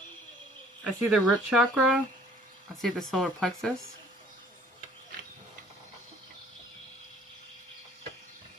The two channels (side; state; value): both; normal; correlation 0.56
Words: see the root chakra. I see the solar plexus.